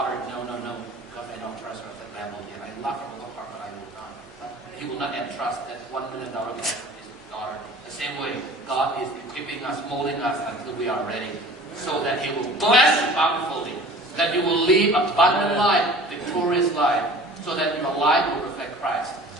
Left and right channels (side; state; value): both; normal; correlation 0.44